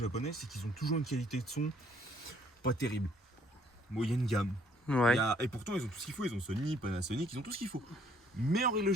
c'est qu'ils ont toujours une qualité de son pas terrible. Moyenne gamme. Ouais. Et pourtant, ils ont tout ce qu'il faut. Ils ont Sony, Panasonic, ils ont tout ce qu'il faut. Mais en règle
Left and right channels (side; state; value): both; normal; correlation 0.64